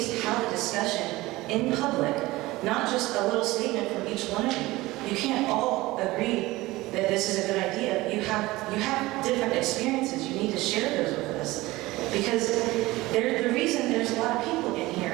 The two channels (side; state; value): left; quieter; 19.4 dB